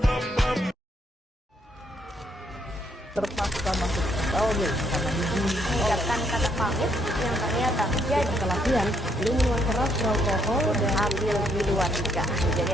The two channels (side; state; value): both; normal; correlation 0.72